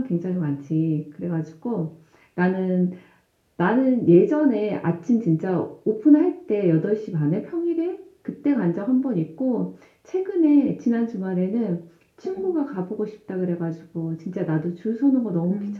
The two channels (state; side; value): identical; both; correlation 1.00